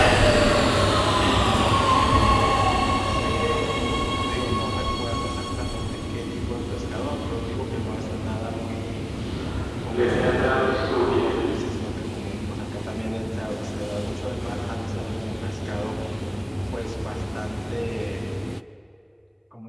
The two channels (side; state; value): both; identical; correlation 1.00